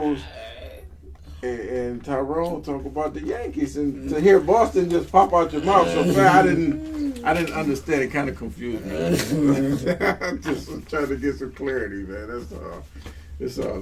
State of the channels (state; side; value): identical; both; correlation 1.00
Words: and Tyrone talk about the Yankees, and to hear Boston just pop out your mouth so fast, I didn't understand. It kind of confused me. I'm just trying to get some clarity, man. That's all. It's all